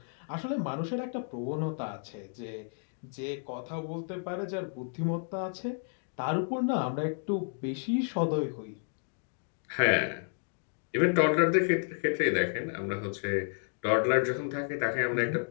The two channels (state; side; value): silent; right; 57 dB below the other